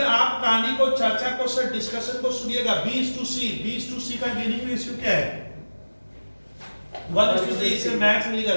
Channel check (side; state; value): both; inverted; correlation -1.00